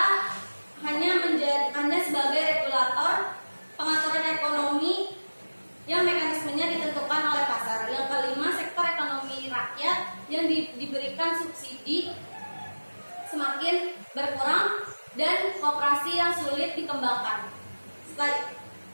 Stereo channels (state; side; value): inverted; both; correlation -1.00